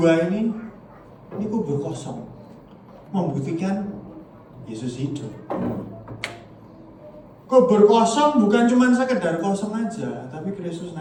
ini kubur kosong, membuktikan Yesus hidup. Kubur kosong bukan cuma sekedar kosong aja, tapi Kristus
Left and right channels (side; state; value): both; identical; correlation 1.00